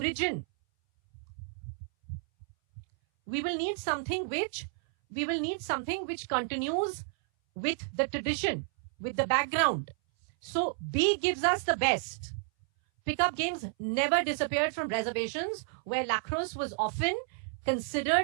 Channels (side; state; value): left; silent; 57 dB below the other